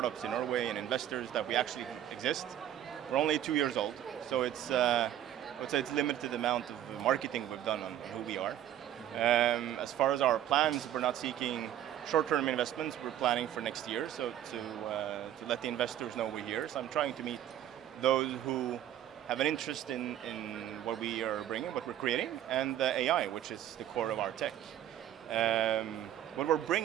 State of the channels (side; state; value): left; quieter; 11.4 dB